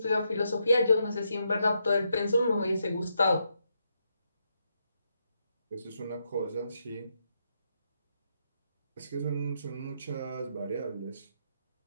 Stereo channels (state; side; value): inverted; both; correlation -0.80